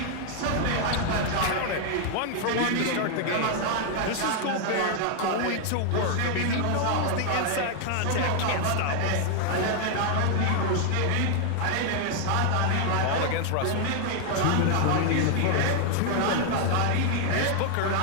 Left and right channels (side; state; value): both; different; correlation 0.00